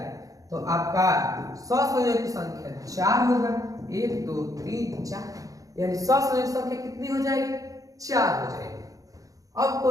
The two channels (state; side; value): late; left; 0.17 ms